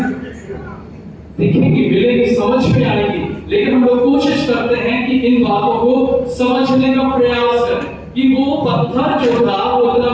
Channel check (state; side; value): identical; both; correlation 1.00